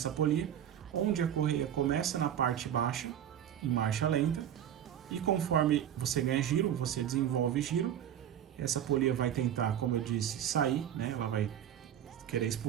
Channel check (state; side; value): quieter; left; 10.2 dB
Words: polia, onde a correia começa na parte baixa, em marcha lenta, e conforme você ganha giro, você desenvolve giro, essa polia vai tentar, como eu disse, sair, né? Ela vai querer